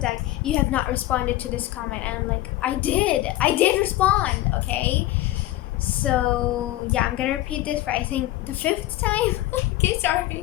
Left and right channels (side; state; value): right; quieter; 16.2 dB